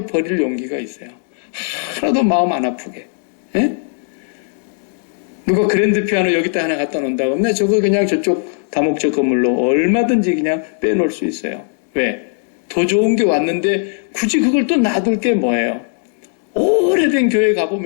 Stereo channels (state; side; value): silent; right; 68 dB below the other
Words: 버릴 용기가 있어요. 하나도 마음 안 아프게. 예? 누가 그랜드 피아노 여기다 하나 갖다 놓는다 그러면 저거 그냥 저쪽 다목적 건물로 얼마든지 그냥 빼놓을 수 있어요. 왜? 더 좋은 게 왔는데 굳이 그걸 또 놔둘 게 뭐예요? 오래된 교회